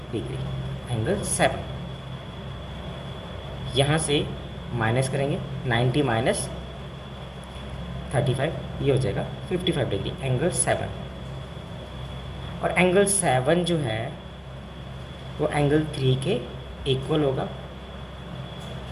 डिग्री एंगल 7, यहाँ से माइनस करेंगे 90 माइनस 35, ये हो जाएगा 55 डिग्री एंगल 7। और एंगल 7 जो है वो एंगल 3 के इक्वल होगा,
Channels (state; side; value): identical; both; correlation 1.00